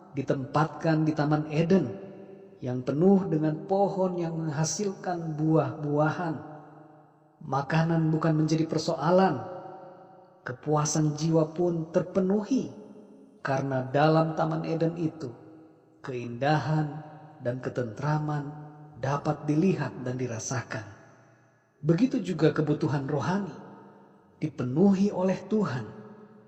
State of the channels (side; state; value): both; identical; correlation 1.00